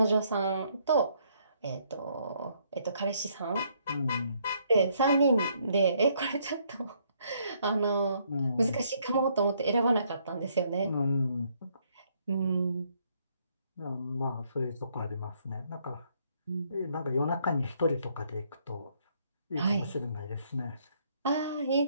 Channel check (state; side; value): inverted; both; correlation -0.69